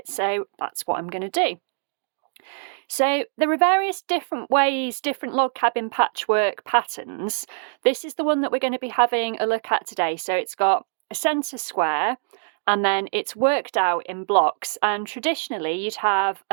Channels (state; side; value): silent; left; digital silence